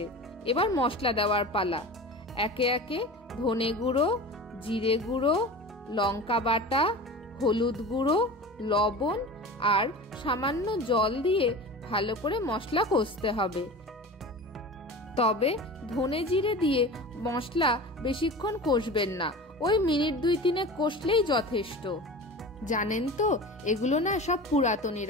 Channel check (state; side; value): normal; both; correlation 0.33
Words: এবার মশলা দেওয়ার পালা। একে একে ধনে গুঁড়ো, জিরে গুঁড়ো, লঙ্কা বাটা, হলুদ গুঁড়ো, লবণ আর সামান্য জল দিয়ে ভালো করে মশলা কষতে হবে। তবে ধনে জিরে দিয়ে মশলা বেশিক্ষণ কষবেন না, ওই মিনিট 2-3 কষলেই যথেষ্ট। জানেন তো এগুলো না সব পুরাতনী